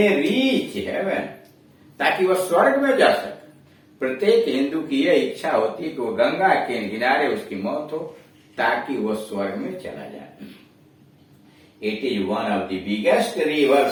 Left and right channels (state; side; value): identical; both; correlation 1.00